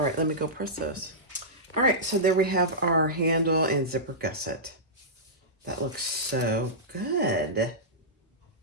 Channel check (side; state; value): both; normal; correlation -0.15